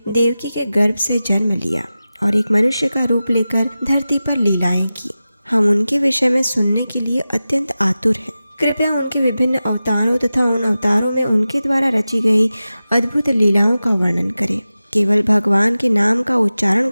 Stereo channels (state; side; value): inverted; both; correlation -0.95